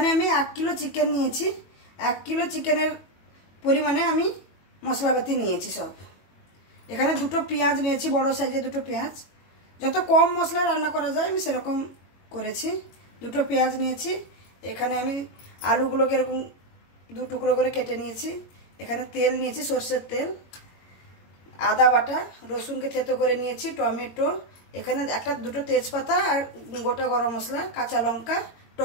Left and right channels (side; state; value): right; late; 21 ms